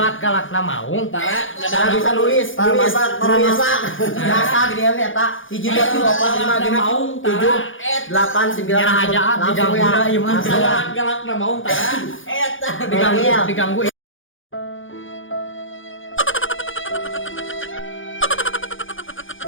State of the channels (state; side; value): late; right; 0.57 ms